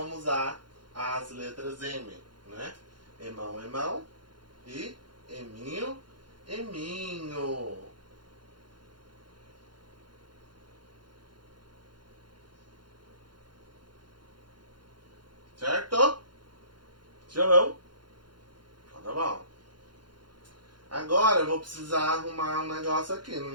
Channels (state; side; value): late; left; 0.71 ms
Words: usar as letras M, né? Emão, emão e eminho, eminho. Certo? João? Então tá bom. Agora eu vou precisar arrumar um negócio aqui no